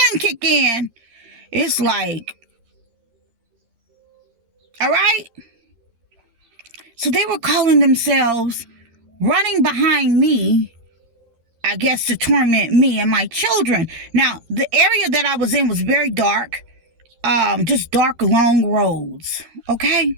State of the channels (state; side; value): late; left; 13 ms